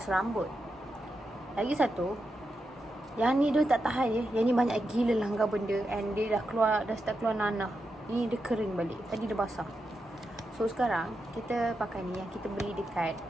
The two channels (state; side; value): normal; both; correlation 0.87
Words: rambut. Lagi satu, yang ni dia tak tahan je. Yang ni banyak gila langgar benda and dia dah start keluar nanah. Ni dia kering balik. Tadi dia basah. So sekarang kita pakai ni yang kita beli dekat